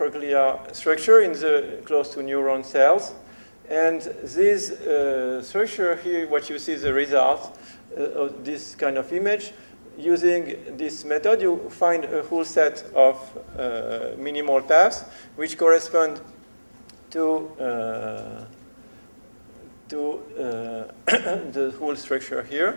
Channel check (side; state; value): both; inverted; correlation -1.00